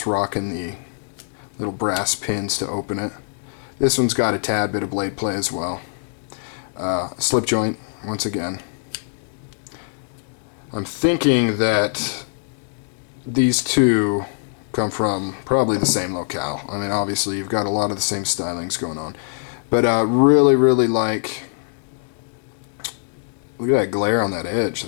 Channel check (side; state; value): right; silent; digital silence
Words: rocking the little brass pins to open it. This one's got a tad bit of blade play as well. Slip joint, once again. I'm thinking that these two come from probably the same locale. I mean, obviously you've got a lot of the same stylings going on. But really like, look at that glare on that edge.